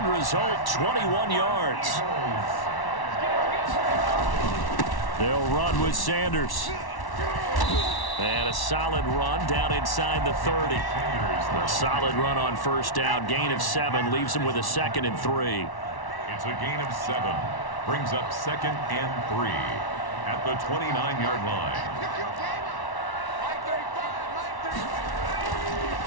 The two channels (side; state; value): right; late; 1.1 ms